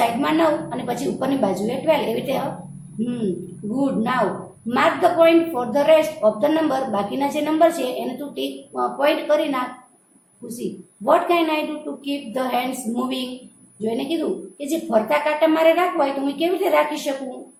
9 અને પછી ઉપરની બાજુએ 12. એવી રીતે good. Now mark the point for the rest of the number. બાકીના જે નંબર છે એને તું ટીક પોઈન્ટ કરી નાખ. ખુશી, what can I do to keep the hands moving? જો એને કીધું કે જે ફરતા કાંટા મારે રાખવા હોય તો હું કેવી રીતે રાખી શકું?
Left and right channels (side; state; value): both; identical; correlation 1.00